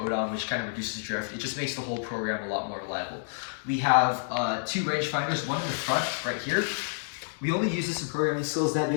which kind of reduces drift. It just makes the whole program a lot more reliable. We have 2 rangefinders, one in the front right here. We only use this in programming skills. That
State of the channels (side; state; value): right; silent; digital silence